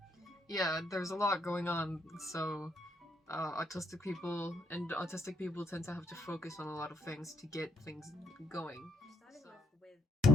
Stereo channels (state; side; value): normal; both; correlation 0.74